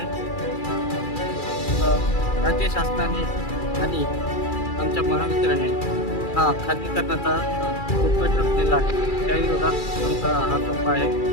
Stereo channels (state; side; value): late; right; 2.3 ms